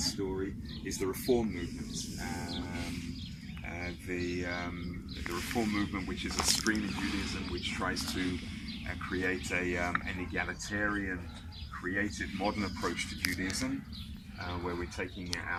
story is the reform movement. The reform movement, which is a stream in Judaism which tries to create an egalitarian, creative, modern approach to Judaism, where we're taking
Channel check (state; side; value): identical; both; correlation 1.00